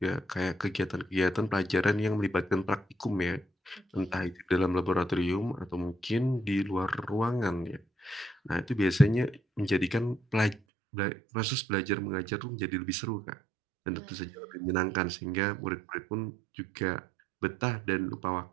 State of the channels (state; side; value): drops out; left; at 10.6 s